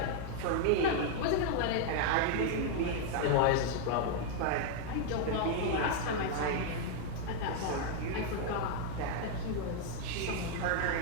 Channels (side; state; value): both; different; correlation 0.00